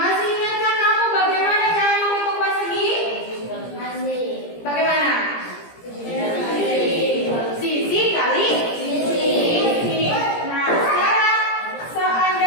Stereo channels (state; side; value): late; right; 17 ms